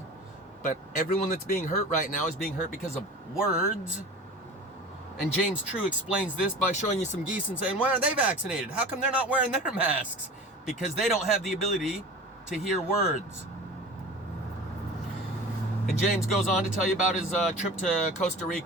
But everyone that's being hurt right now is being hurt because of words. And James True explains this by showing you some geese and saying, why aren't they vaccinated? How come they're not wearing their masks? Because they don't have the ability to hear words. And James goes on to tell you about his trip to Costa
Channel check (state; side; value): normal; both; correlation 0.37